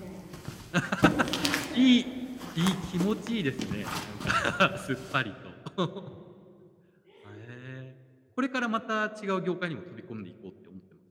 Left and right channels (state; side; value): identical; both; correlation 1.00